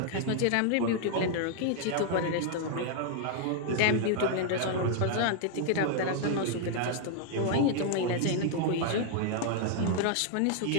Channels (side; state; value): both; different; correlation 0.00